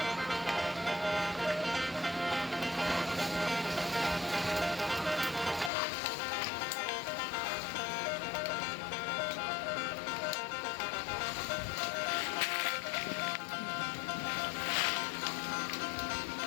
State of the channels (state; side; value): drops out; right; at 5.7 s